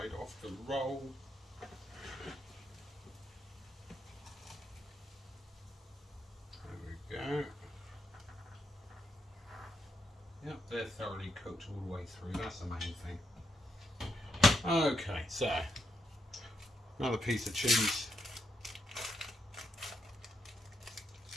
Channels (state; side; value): normal; both; correlation 0.80